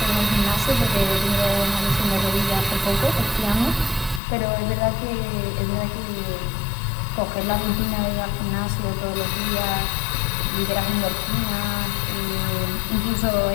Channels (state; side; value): drops out; right; at 4.2 s